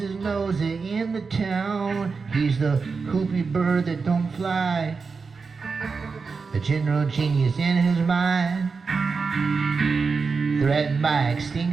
nose in the town. He's the whoopie bird that don't fly, the general genius in his mind, threatened by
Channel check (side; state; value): left; quieter; 4.8 dB